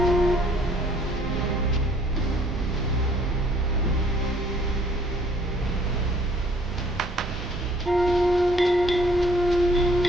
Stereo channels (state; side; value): normal; both; correlation 0.60